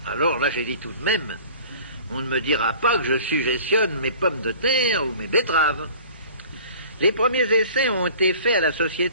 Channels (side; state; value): both; inverted; correlation -0.45